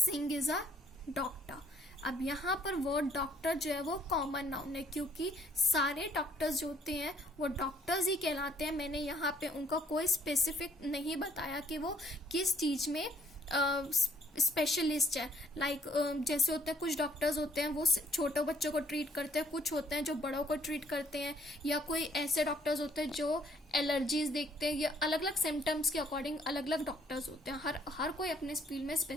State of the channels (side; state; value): both; normal; correlation 0.63